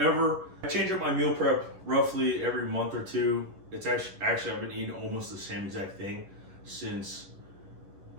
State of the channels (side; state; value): left; late; 10 ms